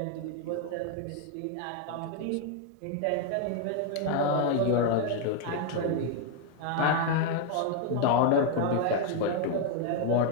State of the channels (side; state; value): both; different; correlation 0.01